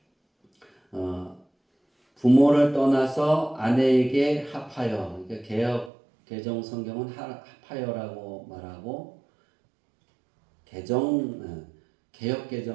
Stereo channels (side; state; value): left; drops out; at 5.9 s